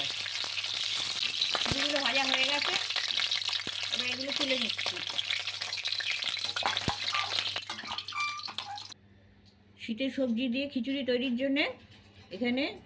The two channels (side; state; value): both; identical; correlation 1.00